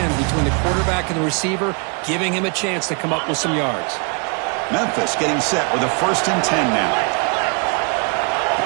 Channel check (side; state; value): left; quieter; 35.4 dB